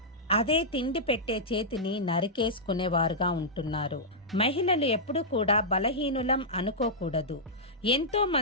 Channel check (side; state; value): both; normal; correlation -0.11